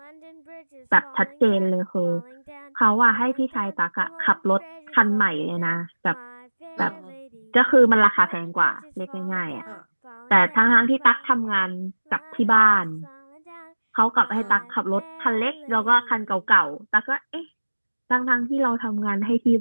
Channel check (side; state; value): both; inverted; correlation -1.00